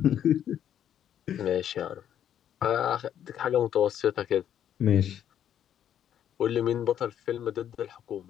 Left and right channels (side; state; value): right; quieter; 10.0 dB